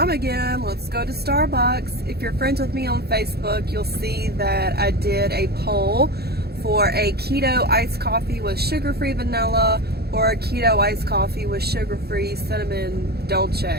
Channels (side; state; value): left; late; 0.46 ms